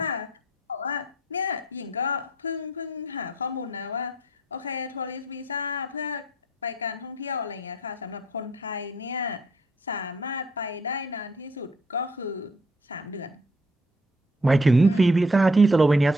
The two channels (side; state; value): both; normal; correlation 0.64